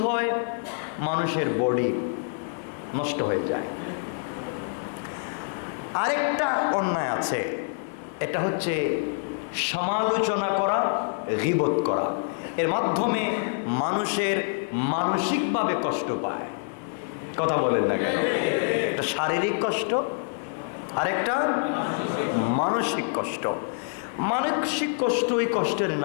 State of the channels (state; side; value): silent; right; 61 dB below the other